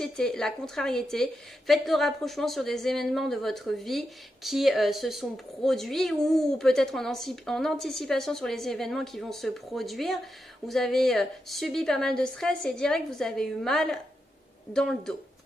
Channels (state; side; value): normal; both; correlation 0.86